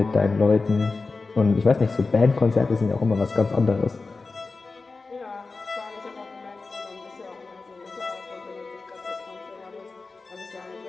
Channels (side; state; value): right; quieter; 3.9 dB